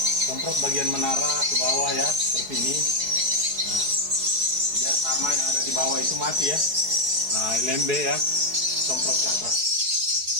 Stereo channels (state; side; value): late; left; 4.7 ms